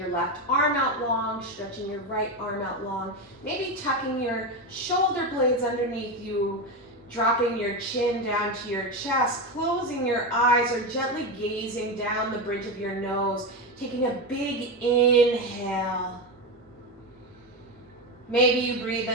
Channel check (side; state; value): both; normal; correlation 0.15